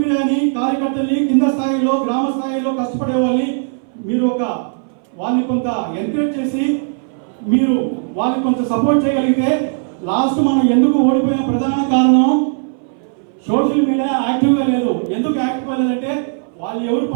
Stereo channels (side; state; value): left; silent; 62 dB below the other